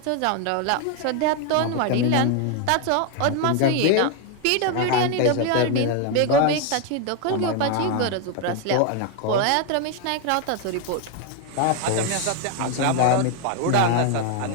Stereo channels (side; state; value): both; different; correlation 0.01